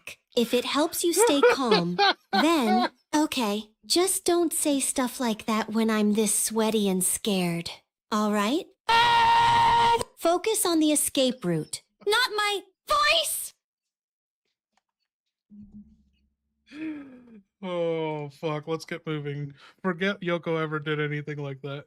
If it helps you stay calm, then, okay, just don't say stuff like that when I'm this sweaty and scared. All right? Focus on the escape route, not my voice! Oh, fuck. Let's get moving. Forget Yoko ever did anything like that.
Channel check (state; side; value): identical; both; correlation 1.00